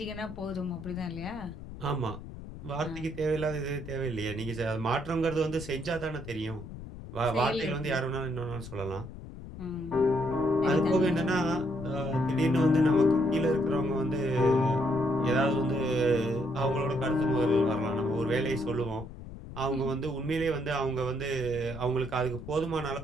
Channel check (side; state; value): left; noise; rumble, 13 dB below the sound